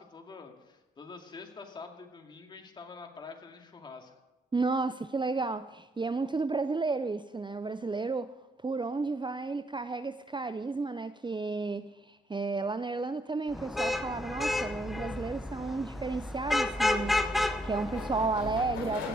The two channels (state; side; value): normal; both; correlation 0.74